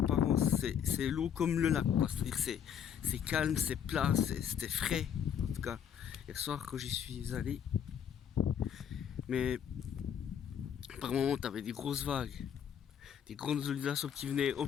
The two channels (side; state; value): right; quieter; 8.6 dB